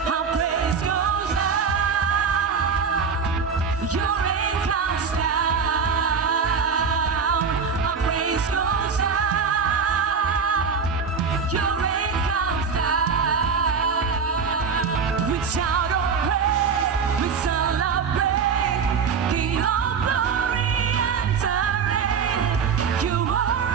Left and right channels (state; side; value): quieter; left; 5.8 dB